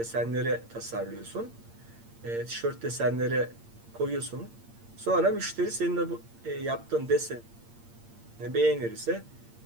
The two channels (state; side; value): late; left; 8.7 ms